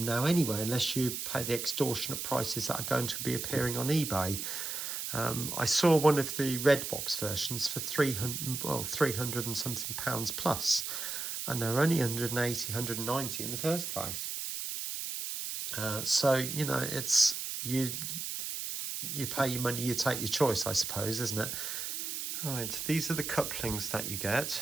now anyway unless you pay the extortionate prices that are going to be appearing on eBay. I saw one of the red box versions for 300 and something pounds plus, and they're only 180, 190 in the first place. So, you know, it's you pay your money, you take your choice, I suppose, isn't it? Right, these are the couplings that you get.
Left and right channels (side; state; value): right; noise; hiss, 4 dB below the sound